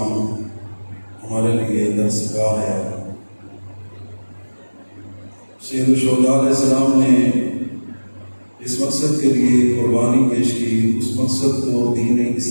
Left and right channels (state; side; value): inverted; both; correlation -1.00